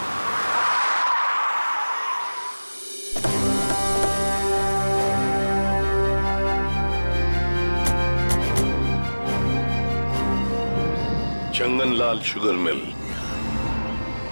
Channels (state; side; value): inverted; both; correlation -1.00